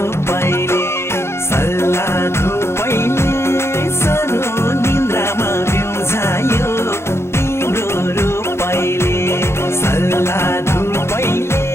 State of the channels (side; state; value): right; late; 0.12 ms